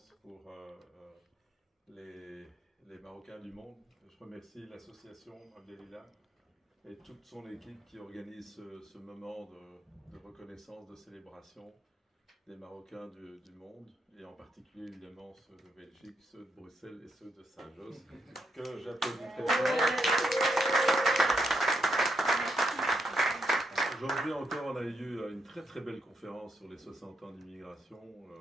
pour les Marocains du monde. Je remercie l'association Abdelila et toute son équipe qui organise ce moment de reconnaissance, de célébration des Marocains du monde, et en particulier évidemment ceux de Belgique, ceux de Bruxelles et ceux de Saint-Josse, que j'applaudis très fort. Aujourd'hui encore, on a eu une très très belle conférence sur les 60 ans d'immigration.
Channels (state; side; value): normal; both; correlation 0.80